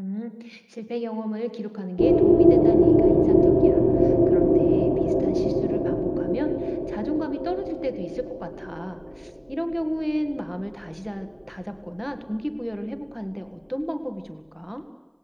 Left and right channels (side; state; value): both; identical; correlation 1.00